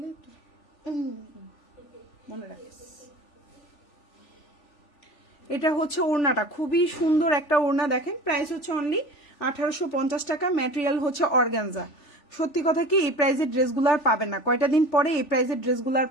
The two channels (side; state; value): right; late; 3.4 ms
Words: তো মনে রাখিস। এটা হচ্ছে ওড়নাটা, খুবই সুন্দর একটা ওড়না, দেখেন প্রাইস হচ্ছে অনলি 1850 টাকা, ম্যাটেরিয়াল হচ্ছে অর্গানজা। সত্যি কথা কি এই প্রাইসের ড্রেসগুলো আর পাবেন না, কয়টা দিন পরে এই প্রাইসের ড্রেসগুলো আর